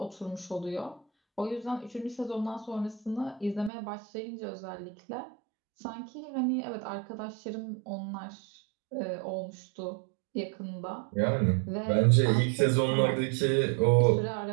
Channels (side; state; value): left; drops out; at 3.7 s